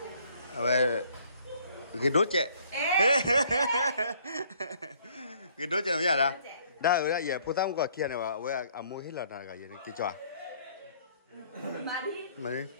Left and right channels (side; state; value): both; inverted; correlation -0.61